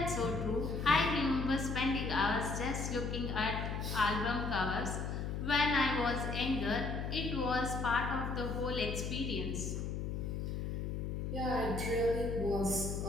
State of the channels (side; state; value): left; noise; hum, 3 dB below the sound